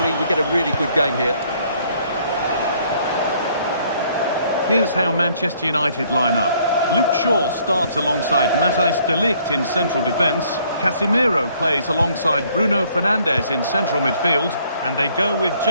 we get a really good game here. Here's how Manchester United line up. Luke Shaw starts alongside Matthijs de Ligt in central defence. Casemiro plays alongside Bruno Fernandes in central midfield. And they go with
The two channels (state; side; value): inverted; both; correlation -0.63